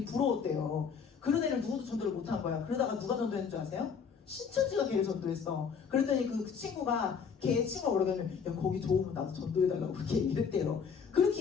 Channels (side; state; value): right; quieter; 6.4 dB